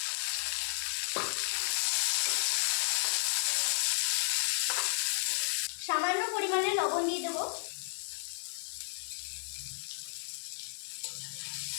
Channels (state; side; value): silent; right; 55 dB below the other